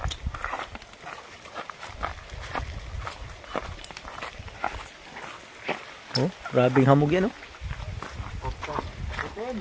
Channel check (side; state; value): both; identical; correlation 1.00